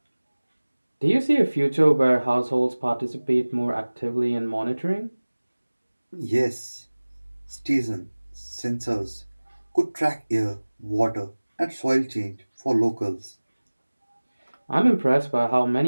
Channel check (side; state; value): both; inverted; correlation -1.00